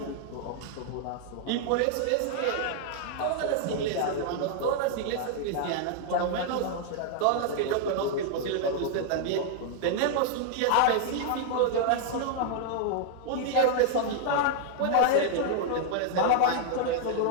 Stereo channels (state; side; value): different; both; correlation -0.01